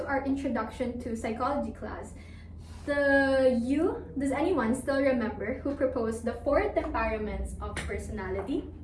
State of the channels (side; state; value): both; identical; correlation 1.00